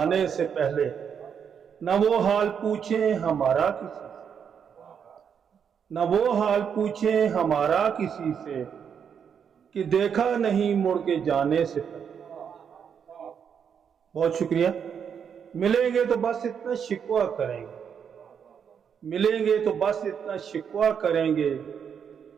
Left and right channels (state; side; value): quieter; left; 7.4 dB